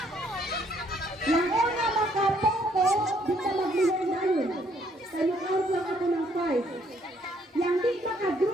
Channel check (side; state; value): both; normal; correlation 0.67